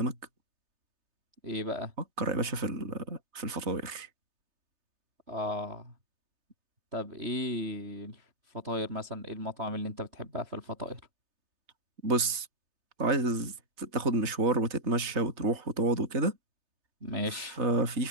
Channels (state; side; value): late; left; 3.3 ms